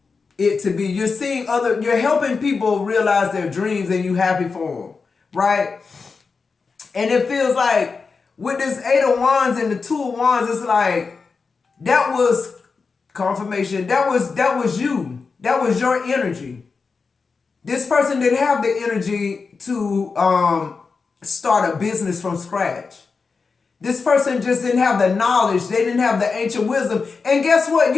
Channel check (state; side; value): quieter; right; 4.8 dB